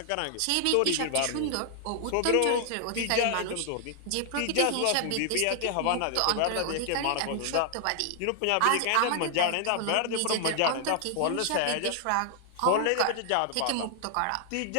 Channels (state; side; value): different; both; correlation 0.00